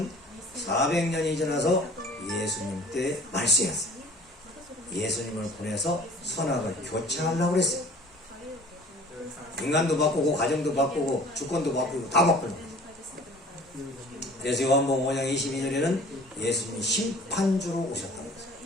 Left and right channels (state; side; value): normal; both; correlation 0.47